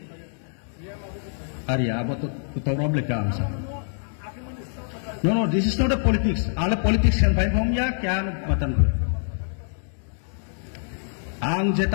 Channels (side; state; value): right; silent; digital silence